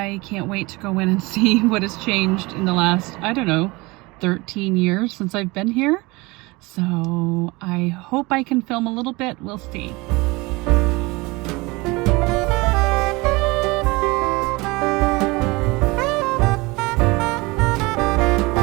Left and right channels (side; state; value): left; quieter; 24.0 dB